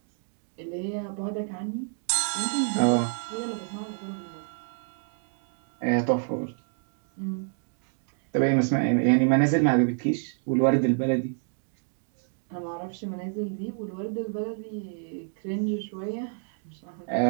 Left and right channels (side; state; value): left; silent; 59 dB below the other